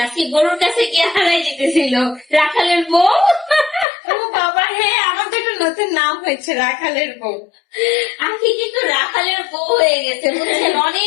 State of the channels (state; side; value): drops out; right; at 3.9 s